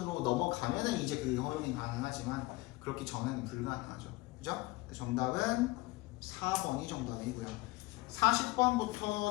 넘어가면은 이제 그 허용이 가능하지만 그렇기 전에는 불가능하죠. 그죠? 정답은 4번이 정답이고요.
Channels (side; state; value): right; quieter; 21.5 dB